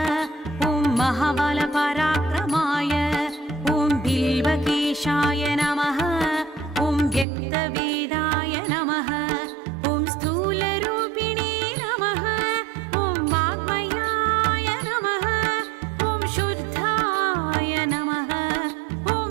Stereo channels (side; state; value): left; drops out; at 7.2 s